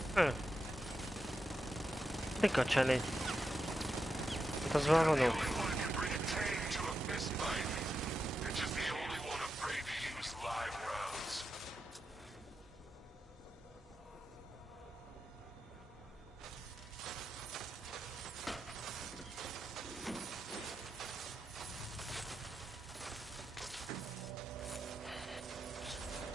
Mika cseléd? Hát az már vonó.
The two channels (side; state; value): both; normal; correlation 0.87